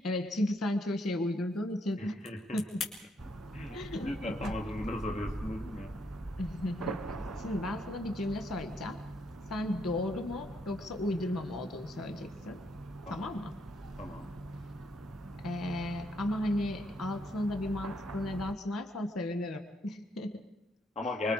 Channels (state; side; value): normal; both; correlation 0.74